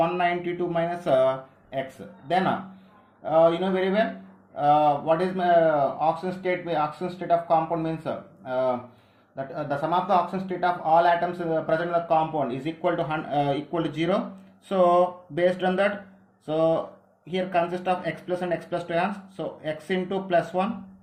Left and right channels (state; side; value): identical; both; correlation 1.00